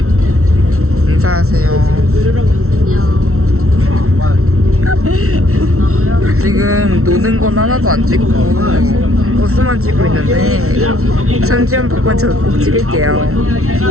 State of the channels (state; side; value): late; left; 0.63 ms